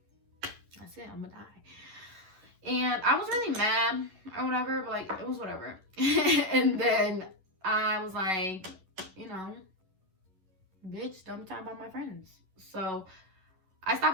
that's it, I'm gonna die. And I was really mad or whatever, but like, it was whatever. And then I was like, you know, bitch, don't be talking about my friends. So I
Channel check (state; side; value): late; left; 11 ms